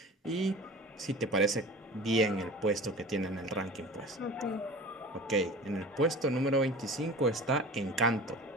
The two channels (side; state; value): both; normal; correlation 0.38